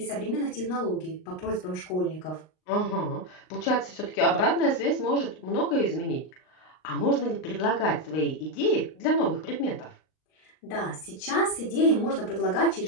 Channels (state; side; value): late; right; 38 ms